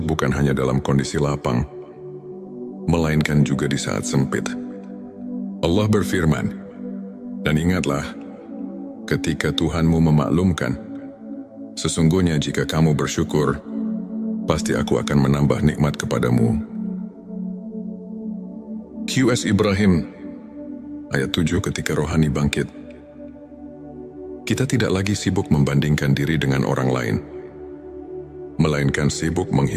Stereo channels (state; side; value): identical; both; correlation 1.00